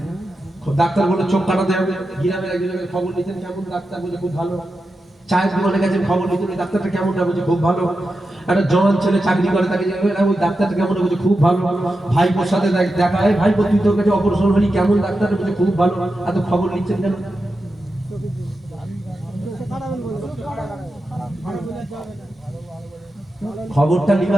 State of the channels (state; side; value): normal; both; correlation 0.90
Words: ডাক্তার বলে চোখ কাটাতে হবে। গ্রামের একজনের খবর নিতেন, কেমন ডাক্তার? বলে খুব ভালো। চায়ের দোকানে গেছেন, খবর নিতেন, ওই ডাক্তারটা কেমন? বলছে খুব ভালো। একটা জওয়ান ছেলে চাকরি করে, তাকে ওই ডাক্তারটা কেমন? বলছে খুব ভালো। ভাইপোর সাথে দেখা, হয় ভাইপো তুই তোর কাছে অপারেশন হলি, কেমন ডাক্তার? বলছে খুব ভালো। এত খবর নিচ্ছেন কেন? খবরটা